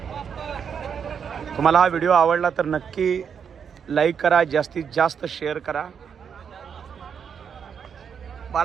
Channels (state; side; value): quieter; left; 7.2 dB